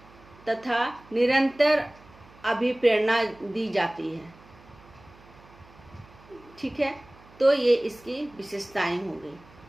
तथा निरंतर अभिप्रेरणा दी जाती है। ठीक है, तो ये इसकी विशेषताएं हो गई।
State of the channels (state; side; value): noise; right; hum, 24 dB below the sound